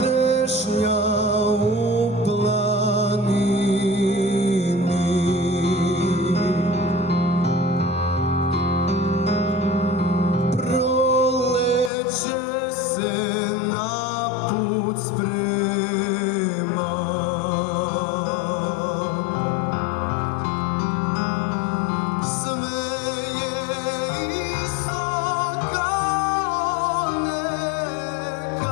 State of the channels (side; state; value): right; drops out; at 11.9 s